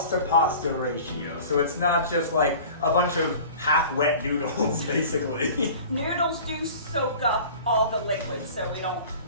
to pasta ratio, so it's not just like a bunch of half-wet noodles, basically. Noodles do soak up all the liquid, so we don't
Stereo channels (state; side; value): inverted; both; correlation -0.42